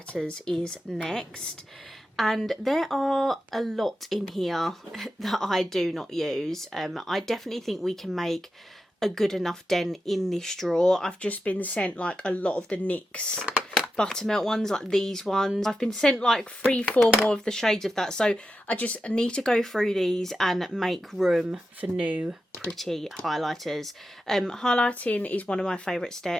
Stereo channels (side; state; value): both; normal; correlation 0.90